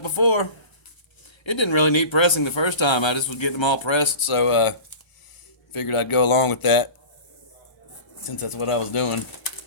before. It didn't really need pressing the first time. I just was getting them all pressed, so figured I'd go along with that since that's what I was doing.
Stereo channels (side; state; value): right; late; 1.0 ms